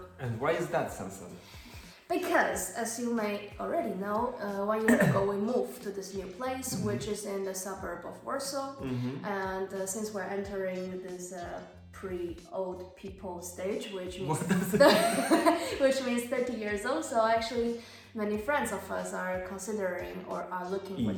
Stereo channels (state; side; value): identical; both; correlation 1.00